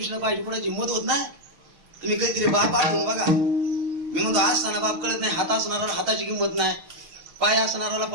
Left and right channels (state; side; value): late; left; 6.3 ms